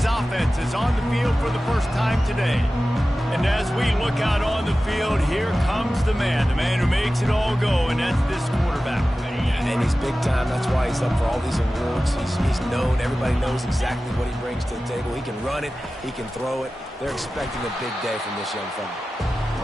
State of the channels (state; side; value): normal; both; correlation 0.95